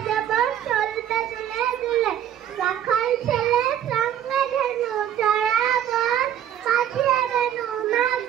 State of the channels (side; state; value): left; quieter; 10.5 dB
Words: দেব চলবে দুলে দুলে। রাখাল ছেলে সঙ্গে ধেনু জড়াবন, পাঠিয়ে দেনু